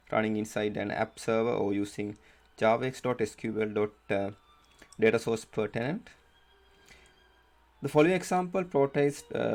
running inside an app server or using javax.sql.data source per tenant. The following example portrays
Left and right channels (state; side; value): identical; both; correlation 1.00